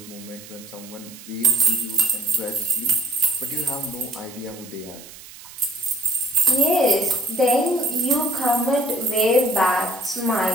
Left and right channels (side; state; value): right; noise; hiss, 17 dB below the sound